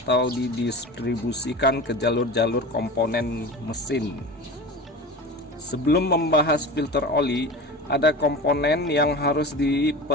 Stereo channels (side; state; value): both; normal; correlation 0.32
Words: didistribusikan ke jalur-jalur komponen mesin. Sebelum membahas filter oli, ada komponen yang harus